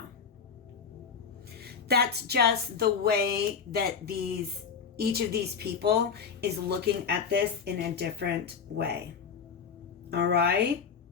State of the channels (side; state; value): right; quieter; 6.3 dB